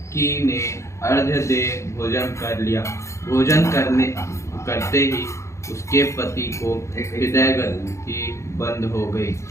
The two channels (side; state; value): right; late; 0.14 ms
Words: ने अर्घ्य दे भोजन कर लिया। भोजन करते ही उसके पति को हृदय गति बंद हो गई।